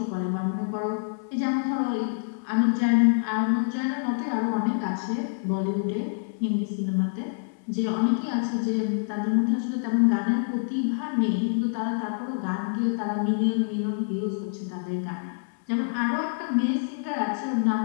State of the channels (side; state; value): right; silent; digital silence